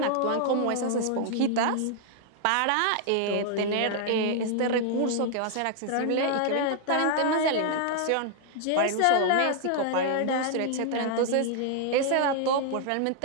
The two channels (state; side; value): different; both; correlation 0.00